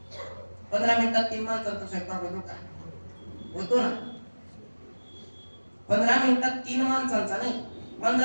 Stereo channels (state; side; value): inverted; both; correlation -1.00